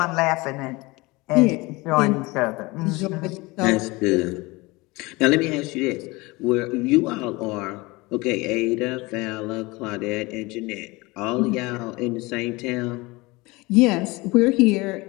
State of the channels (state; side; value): quieter; right; 23.3 dB